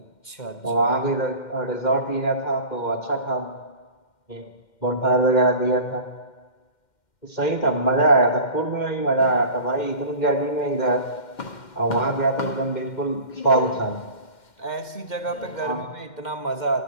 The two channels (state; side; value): late; right; 2.1 ms